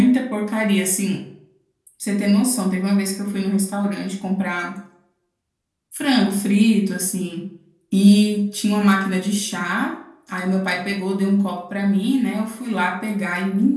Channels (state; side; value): identical; both; correlation 1.00